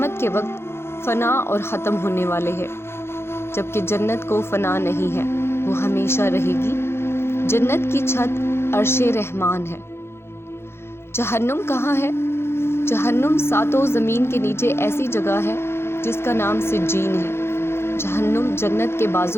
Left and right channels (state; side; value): late; right; 0.12 ms